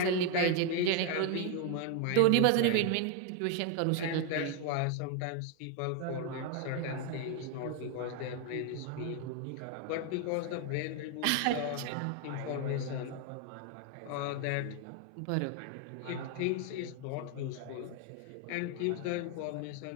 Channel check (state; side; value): different; both; correlation 0.01